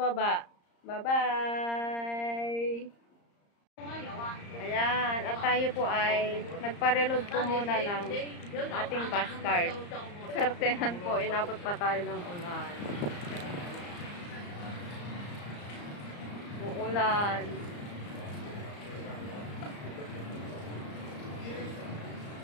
Bye-bye! Ayan. At tayo po ay nagpa-reload po muna ng ating bus card. Swertehan po. Inabot pa tayo ng ulan. Uulan.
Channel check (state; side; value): late; right; 34 ms